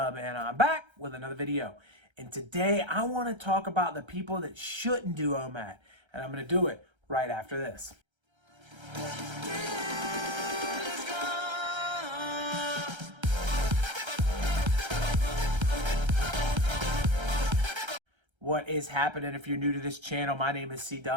and I'm back with another video. And today I want to talk about the people that shouldn't do OMAD, and I'm going to do it right after this. What is happening? If you're new to this channel, my name is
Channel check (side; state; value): left; late; 1.3 ms